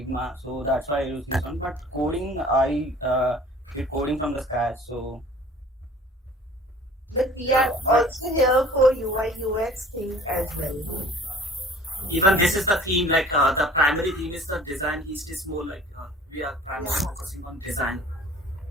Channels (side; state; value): both; normal; correlation 0.49